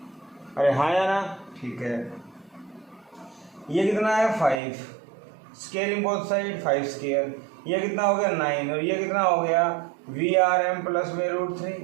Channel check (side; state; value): left; drops out; at 4.6 s